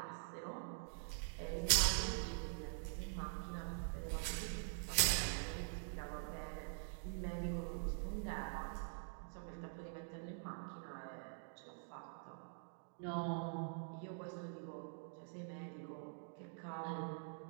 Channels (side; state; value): left; silent; digital silence